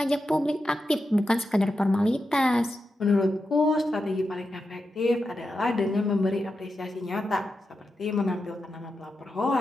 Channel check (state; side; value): normal; both; correlation 0.89